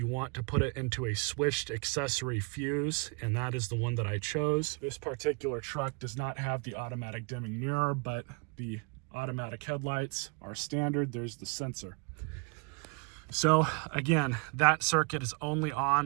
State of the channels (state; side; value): quieter; left; 33.0 dB